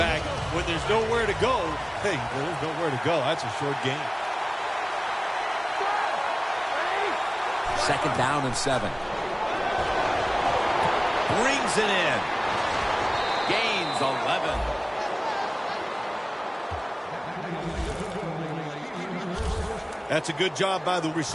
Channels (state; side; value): identical; both; correlation 1.00